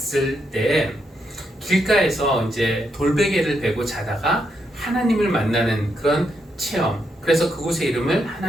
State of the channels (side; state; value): both; normal; correlation 0.80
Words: 때 길가에서 이제 돌베개를 베고 자다가 하나님을 만나는 그런 체험, 그래서 그곳의 이름을